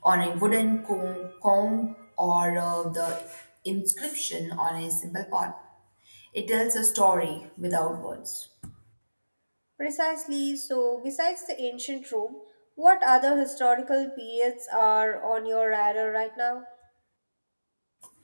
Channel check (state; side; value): inverted; both; correlation -1.00